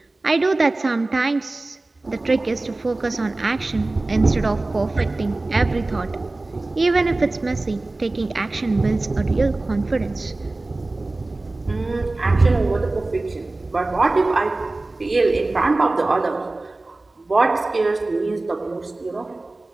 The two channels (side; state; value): left; quieter; 3.0 dB